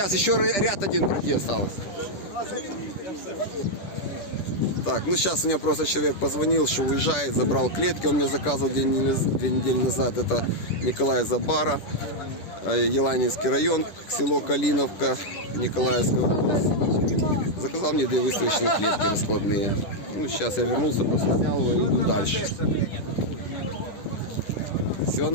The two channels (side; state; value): right; late; 10 ms